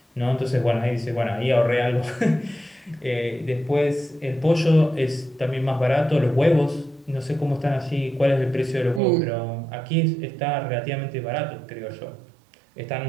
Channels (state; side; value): drops out; left; at 9.0 s